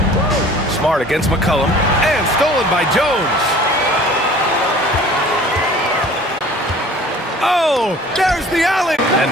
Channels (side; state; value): both; normal; correlation 0.47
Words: Smart against McCollum. And stolen by Jones. Oh, there's the alley. And